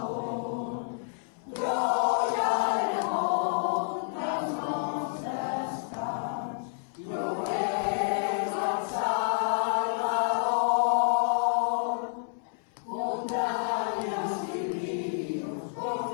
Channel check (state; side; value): silent; right; 58 dB below the other